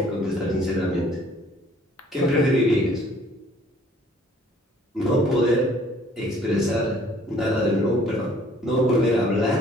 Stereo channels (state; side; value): normal; both; correlation 0.58